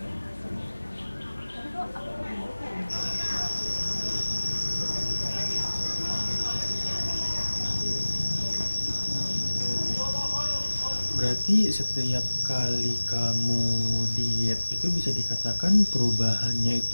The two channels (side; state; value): both; inverted; correlation -1.00